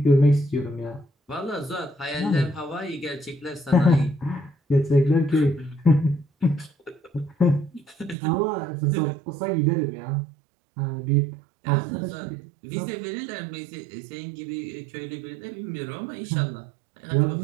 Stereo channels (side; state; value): left; drops out; at 8.2 s